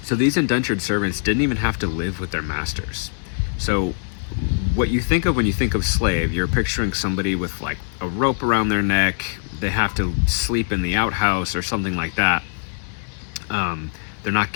So these indentured servants didn't even have to live with their masters. So what you think of when you think of slave, you're picturing somebody with like a rope around their neck. They have to sleep in the outhouse or something like that. They're not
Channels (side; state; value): right; silent; digital silence